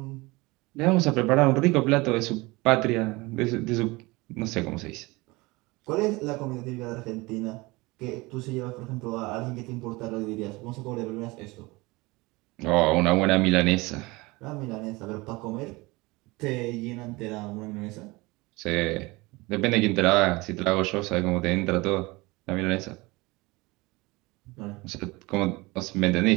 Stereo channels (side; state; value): left; quieter; 23.2 dB